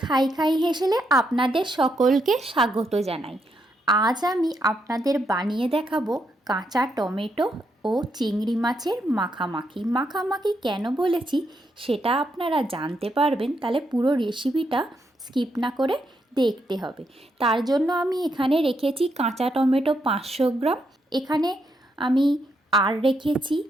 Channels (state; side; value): normal; both; correlation 0.79